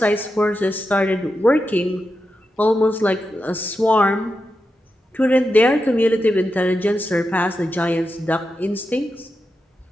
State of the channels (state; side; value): normal; both; correlation 0.88